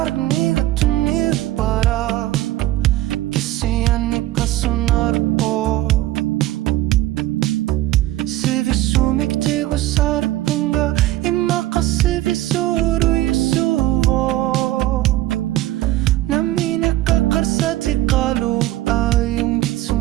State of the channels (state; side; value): quieter; left; 15.5 dB